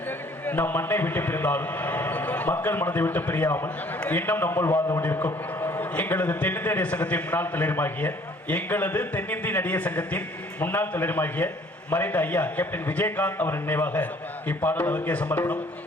நம் மண்ணை விட்டு பிரிந்தாலும் மக்கள் மனதை விட்டு பிரியாமல் இன்னும் நம்மள் வாழ்ந்து கொண்டிருக்கும் எங்களது தென்னிந்திய நடிகர் சங்கத்தின் முன்னாள் தலைவருமாகிய முன்னாள் தலைவருமாகிய மறைந்த ஐயா கேப்டன் விஜயகாந்த் அவர் நினைவாக இப்பாடல் அவருக்கே சமர்ப்பணம்.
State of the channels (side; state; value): both; normal; correlation 0.57